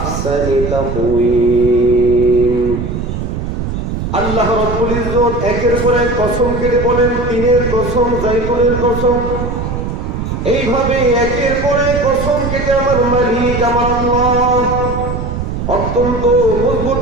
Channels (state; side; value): noise; right; rumble, 4 dB below the sound